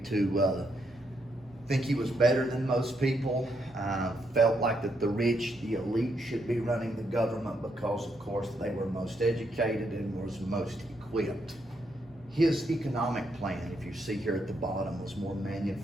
think he was better than most people, felt like that the rich, the elite, should be running the government because, of course, they were most educated and was most equipped. His economic plan, if you see here at the bottom, was more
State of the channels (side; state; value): both; normal; correlation 0.78